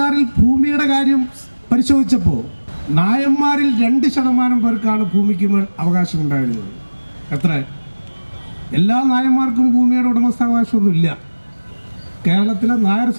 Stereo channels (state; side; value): inverted; both; correlation -1.00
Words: ഭൂമിയുടെ കാര്യം പരിശോധിച്ചപ്പോൾ നായന്മാരിൽ 2% പേർക്കാണ് ഭൂമിക്ക് അവകാശം ഉണ്ടായിരുന്നത്. എത്ര? എല്ലാ നായന്മാർക്കും ഭൂമിയുടെ ഉടമസ്ഥാവകാശമൊന്നുമില്ല. കേരളത്തിലെ നായർ